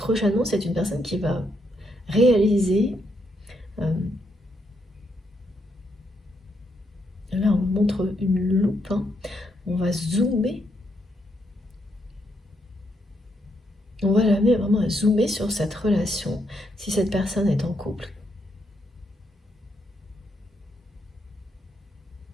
c'est une personne qui va réaliser. Là, on montre une loupe, hein. On va zoomer. On va l'amener vraiment à zoomer sur cette relation, si cette personne est en couple.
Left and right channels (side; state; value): both; normal; correlation 0.77